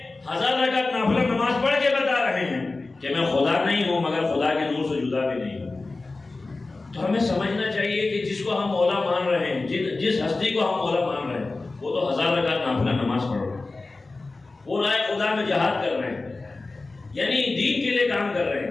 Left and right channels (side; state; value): right; quieter; 3.4 dB